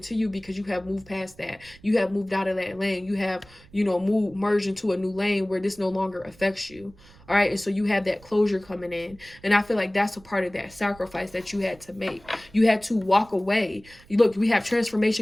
to you because you have moved past that. You have moved out of that lane. You have, you know, merged into a new lane where this no longer affects you. All right. And so you have that closure coming in. And I feel like that's a part of that sacrifice that you had to make. You had to walk away. Look, we have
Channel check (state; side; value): noise; right; rumble, 25 dB below the sound